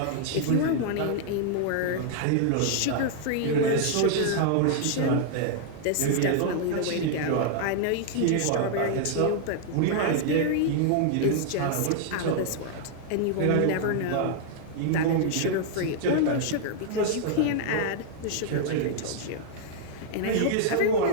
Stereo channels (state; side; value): different; both; correlation -0.01